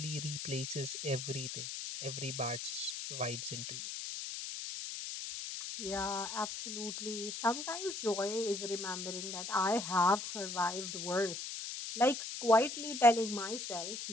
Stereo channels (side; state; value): left; noise; hiss, 6 dB below the sound